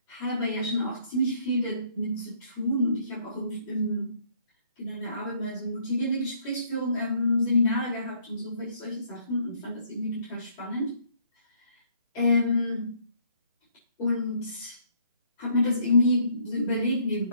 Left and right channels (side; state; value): both; inverted; correlation -0.65